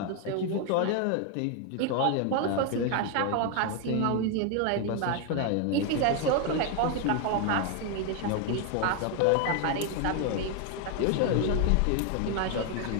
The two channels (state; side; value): different; both; correlation 0.01